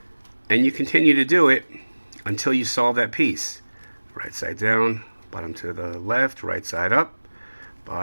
And you continue to do it until you solve that piece. Right side down, bottom to the left, right side up,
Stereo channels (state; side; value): inverted; both; correlation -1.00